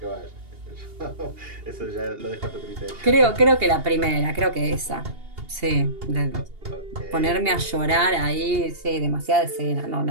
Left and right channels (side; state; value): left; late; 2.8 ms